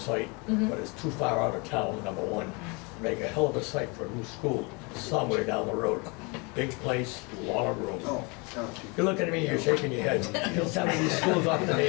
but it's too far out of town, number one. Make a hell of a site for a new school, somewhere down the road. Big place, a lot of room. You're looking at me, you're shaking your head. Get some of these schools off the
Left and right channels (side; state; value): right; quieter; 29.6 dB